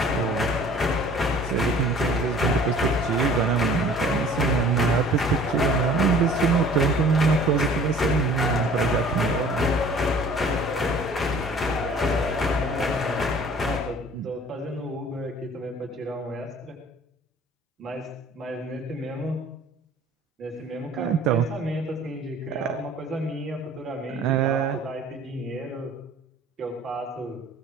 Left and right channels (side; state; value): both; normal; correlation 0.50